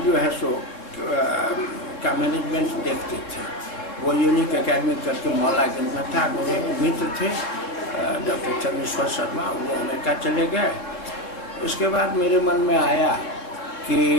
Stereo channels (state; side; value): late; right; 3.8 ms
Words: जो है सो का मैनेजमेंट देखते थे। वो यूनिक एकेडमी करके मौलागंज में था। मेरे एक मित्र थे डॉक्टर चंद्रेश्वर शर्मा, वो अमेरिका चले गए। उसके बाद मेरे मन में आया कि